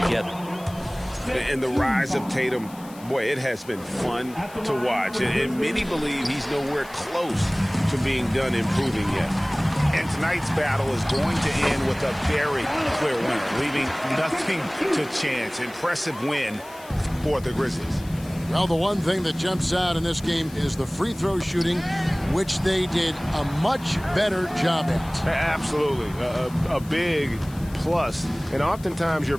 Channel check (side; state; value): left; noise; hiss, 21 dB below the sound